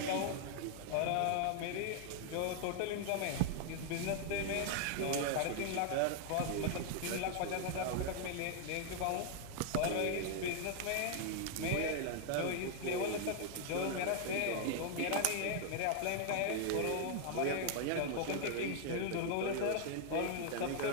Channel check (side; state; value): both; different; correlation 0.00